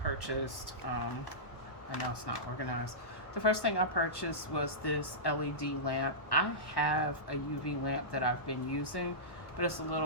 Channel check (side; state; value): right; late; 1.1 ms